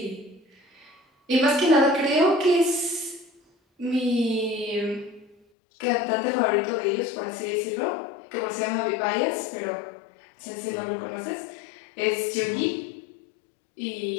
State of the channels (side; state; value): right; drops out; at 5.4 s